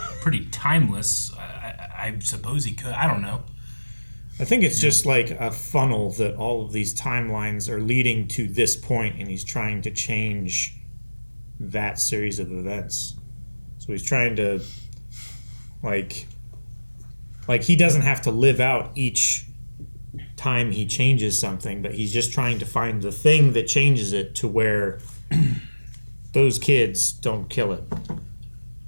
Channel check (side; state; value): both; inverted; correlation -1.00